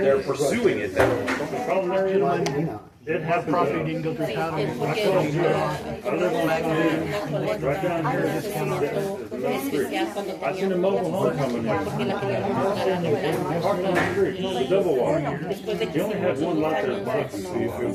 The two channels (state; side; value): identical; both; correlation 1.00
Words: they're pursuing it. The problem there is, it happens. Property didn't go through county. I live on that right down here. I seen a mobile home coming in. Parked on the street, the double wide. He only had one lot there,